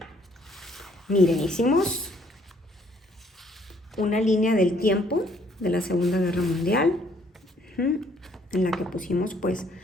Miren, hicimos una línea del tiempo de la Segunda Guerra Mundial, en la que pusimos pues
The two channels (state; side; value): normal; both; correlation 0.64